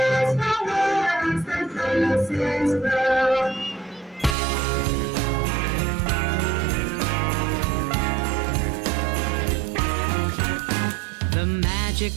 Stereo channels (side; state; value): left; drops out; at 4.4 s